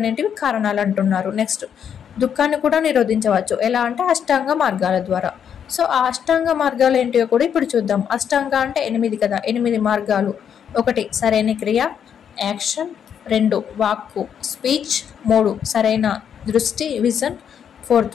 కారణాలు అంటున్నారు. నెక్స్ట్ దుఃఖాన్ని కూడా నిరోధించవచ్చు, ఎలా అంటే అష్టాంగ మార్గాల ద్వారా. సో ఆ అష్టాంగ మార్గాలు ఏంటివో కూడా ఇప్పుడు చూద్దాం. అష్టాంగ అంటే 8 కదా, 8 మార్గాలు. 1 సరైన క్రియ, యాక్షన్, 2 వాక్కు, స్పీచ్, 3 సరైన దృష్టి, విజన్, 4th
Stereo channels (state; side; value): quieter; right; 8.3 dB